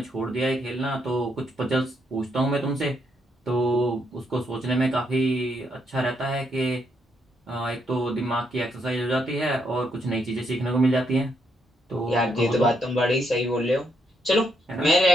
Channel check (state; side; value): normal; both; correlation 0.77